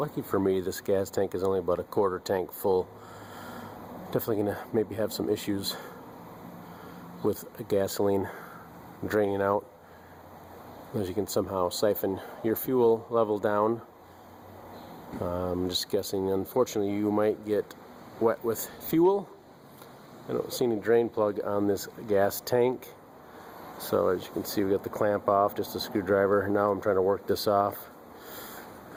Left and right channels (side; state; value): both; identical; correlation 1.00